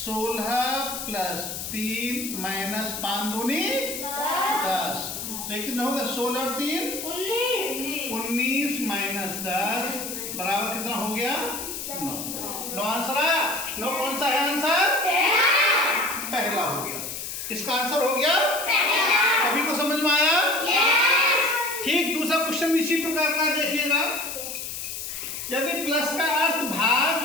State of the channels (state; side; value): noise; left; hiss, 7 dB below the sound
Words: प्लस 3 माइनस 5 दूनी 10। लेकिन होगा 16 और 3 19 माइनस 10 बराबर कितना हो गया 9। 9 आंसर आया। 9 कौन सा है आंसर, पहला हो गया। इसका आंसर हो गया पहला। सभी को समझ में आया? ठीक, दूसरा क्वेश्चन इसी प्रकार का देखिएगा। यदि प्लस का अर्थ भाग,